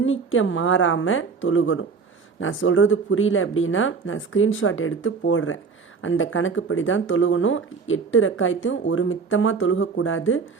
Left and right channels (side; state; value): left; quieter; 5.2 dB